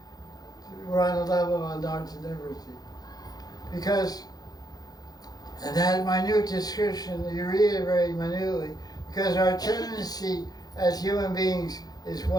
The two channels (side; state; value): right; late; 0.19 ms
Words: we're on the level of anartha liberty. Because, and that minute description, you read it very minutely, because our tendency as human beings is